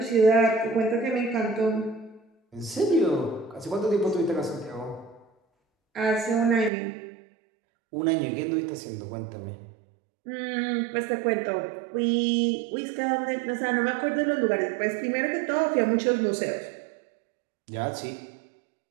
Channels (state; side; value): drops out; left; at 6.7 s